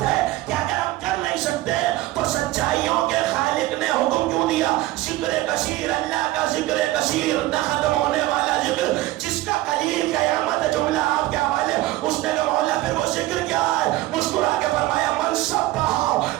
ہے کہ اگر ہم کر نہیں سکتے تو سچائیوں کے خالق نے حکم کیوں دیا؟ ذکر کثیر، اللہ کا ذکر کثیر، نہ ختم ہونے والا ذکر، جس کا قلیل قیامت جملہ آپ کے حوالے. اس نے کہا مولا پھر وہ ذکر کیا ہے؟ مسکرا کے فرمایا من سبح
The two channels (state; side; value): quieter; left; 17.3 dB